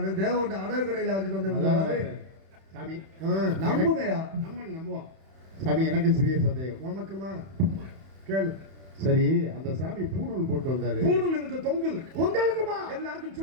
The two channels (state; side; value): late; left; 31 ms